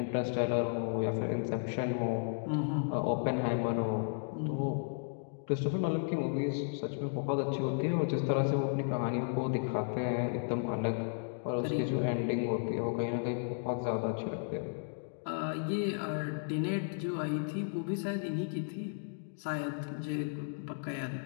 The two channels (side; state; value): right; silent; digital silence